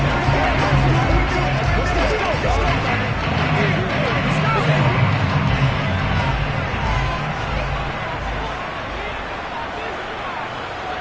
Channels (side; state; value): both; identical; correlation 1.00